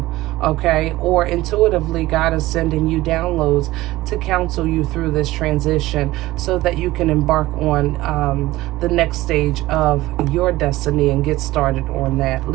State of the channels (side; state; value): left; quieter; 17.7 dB